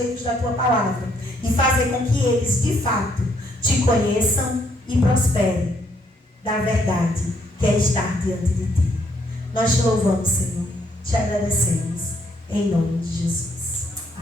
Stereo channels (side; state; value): both; normal; correlation 0.70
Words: da tua palavra e fazer com que eles de fato te conheçam e prosperem da verdade, que é estar diante de ti. Nós te louvamos, Senhor, te agradecemos em nome de Jesus.